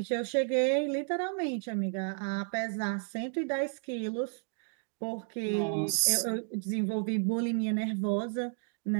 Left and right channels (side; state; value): left; silent; 56 dB below the other